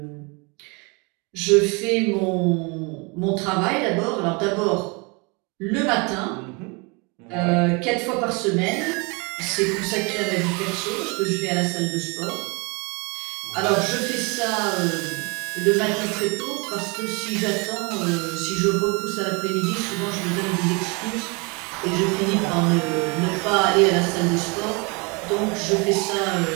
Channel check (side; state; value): left; quieter; 30.1 dB